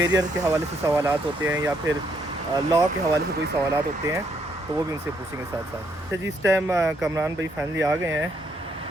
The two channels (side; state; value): both; normal; correlation 0.73